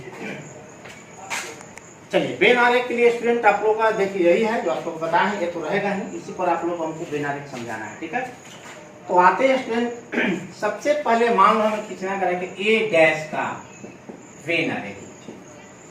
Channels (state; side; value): identical; both; correlation 1.00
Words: चलिए बेनारे के लिए स्टूडेंट आप लोगों का देखिए यही है जो आप लोग बताए हैं, ये तो रहेगा ही, इसी पर आप लोग को हमको बेनारे समझाना है, ठीक है। तो आते हैं स्टूडेंट, सबसे पहले मान लो हमें खींचना करेंगे ए डैश का बेनारे,